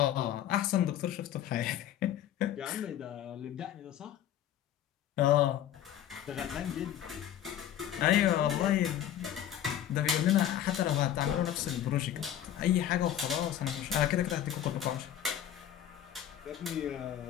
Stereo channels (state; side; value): quieter; right; 11.0 dB